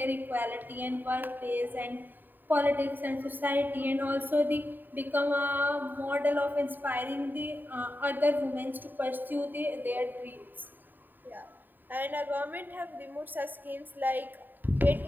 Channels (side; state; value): left; late; 0.091 ms